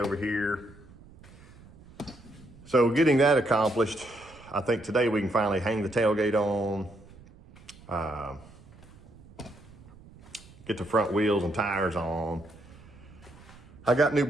here. So getting that accomplished, I think today we can finally hang the tailgate on, get the front wheels and tires on. I got new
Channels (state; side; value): noise; right; rumble, 22 dB below the sound